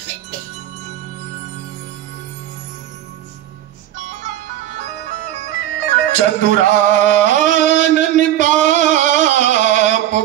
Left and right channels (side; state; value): left; quieter; 12.7 dB